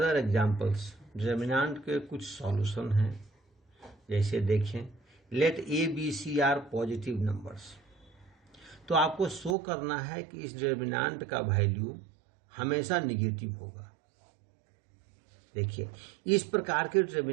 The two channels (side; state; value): left; drops out; at 9.6 s